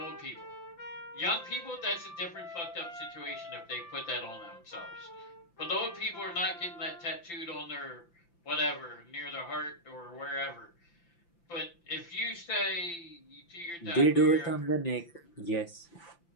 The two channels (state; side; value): late; right; 5.9 ms